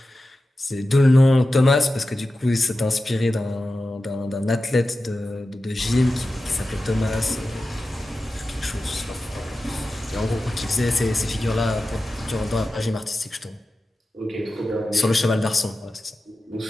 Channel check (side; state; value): both; normal; correlation 0.93